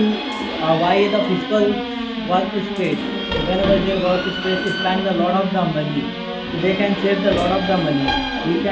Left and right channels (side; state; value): both; identical; correlation 1.00